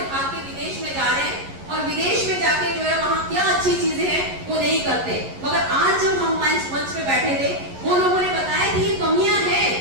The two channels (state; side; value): late; left; 11 ms